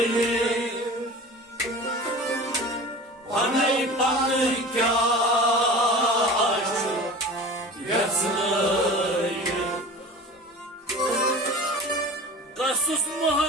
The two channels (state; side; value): normal; both; correlation 0.37